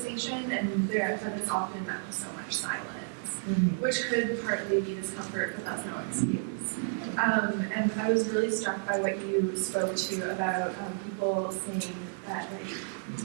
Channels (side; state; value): left; silent; digital silence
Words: and that it's often met with so much silence, which could partly be discomfort, but that's no excuse. And I was really struck by what you spoke to about people saying that like